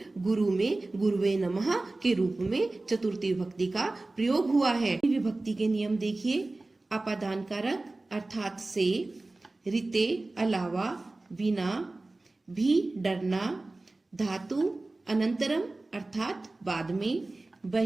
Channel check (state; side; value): quieter; left; 3.0 dB